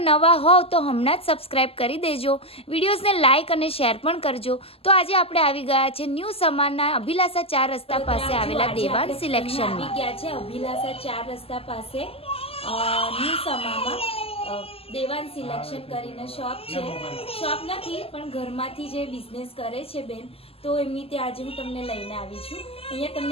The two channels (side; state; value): right; late; 0.28 ms